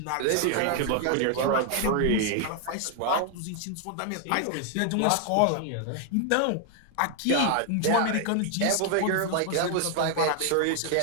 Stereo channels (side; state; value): both; different; correlation 0.00